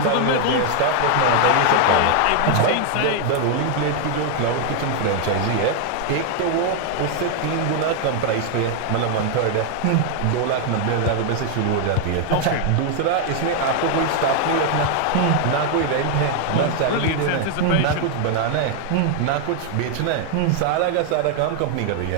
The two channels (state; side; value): different; both; correlation 0.00